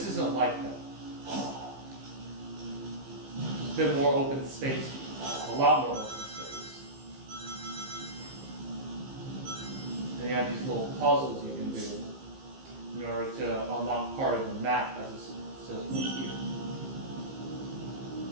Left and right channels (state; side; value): late; left; 15 ms